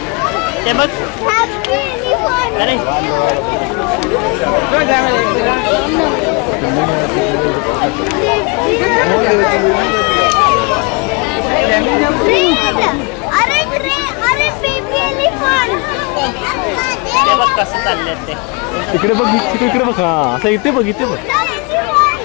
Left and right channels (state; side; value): quieter; right; 30.9 dB